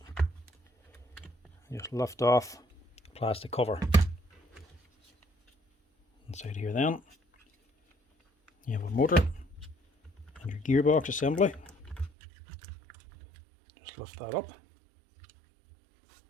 just lift off the plastic cover. Inside here then you have a motor and your gearbox assembly. Just lift that up,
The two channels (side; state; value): left; drops out; at 12.1 s